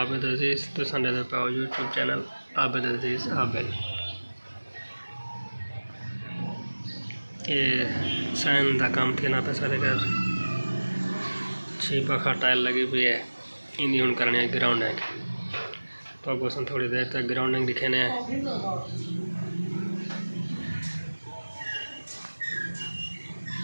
अजीज़ तुसां ॾिसंदा पिया यूट्यूब चैनल आबिद अजीज़ आबिद। ये साइन का काम थी ना पे सारे घर 6 पखा टाइल लगी हुई है। इन्हीं हूँ करने है ग्राउंडिंग। तो आपको थोड़ी देर तक ग्राउंडिंग दिखाने हैं।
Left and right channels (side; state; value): both; inverted; correlation -1.00